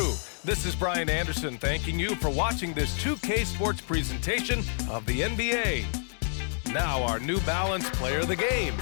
this is Brian Anderson thanking you for watching this 2K Sports presentation of the NBA. Now our New Balance player of the game,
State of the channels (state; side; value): silent; right; 59 dB below the other